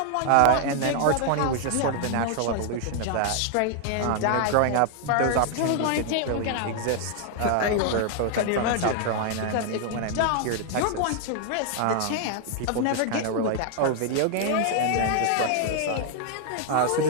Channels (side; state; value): both; different; correlation 0.00